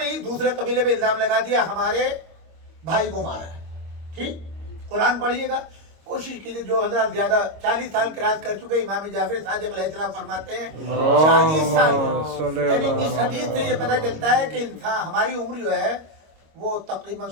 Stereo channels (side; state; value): left; late; 26 ms